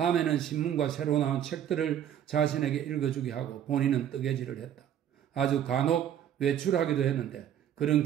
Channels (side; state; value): left; quieter; 10.0 dB